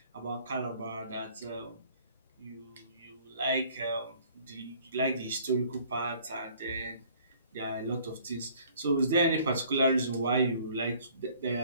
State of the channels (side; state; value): both; inverted; correlation -0.56